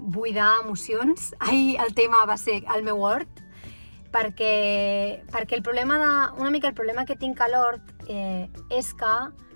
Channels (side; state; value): both; inverted; correlation -1.00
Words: emocions. Ahir el tema va ser el meu hort, perquè el problema que tinc a l'hort és que